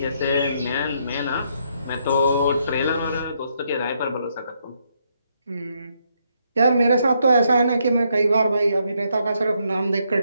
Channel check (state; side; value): inverted; both; correlation -0.75